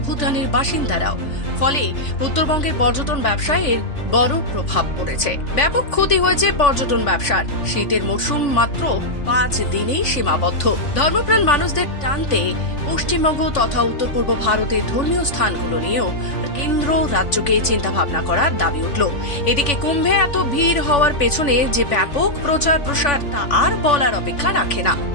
ভুটানের বাসিন্দারাও। ফলে উত্তরবঙ্গের পর্যটন ব্যবসায় এর বড় প্রভাব পড়েছে। ব্যাপক ক্ষতি হয়েছে পর্যটন ব্যবসার। শীতের মরশুম মাত্র 5 দিনেই সীমাবদ্ধ। ধর্মপ্রাণ মানুষদের টানতে পশ্চিমবঙ্গ তথা উত্তর পূর্ব ভারতের ধর্মীয় স্থানগুলো নিয়েও কেন্দ্র রাজ্যকে চিন্তাভাবনা করার দাবি উঠল। এদিকে কুম্ভে এত ভিড় হওয়ার পেছনে যে ব্যাপক প্রচার প্রসার তা আর বলার অপেক্ষা রাখে না।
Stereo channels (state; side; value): late; right; 3.5 ms